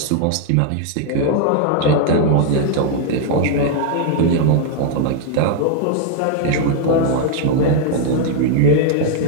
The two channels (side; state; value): both; different; correlation 0.00